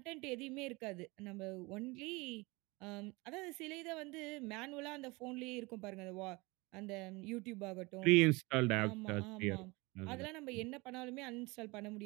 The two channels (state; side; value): quieter; left; 24.7 dB